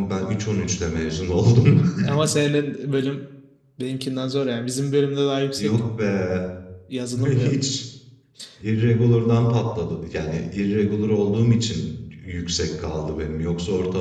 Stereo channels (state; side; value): identical; both; correlation 1.00